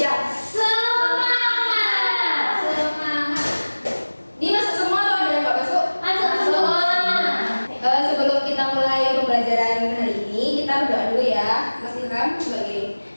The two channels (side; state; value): both; inverted; correlation -1.00